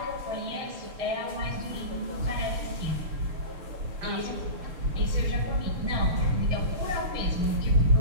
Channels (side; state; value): left; late; 6.7 ms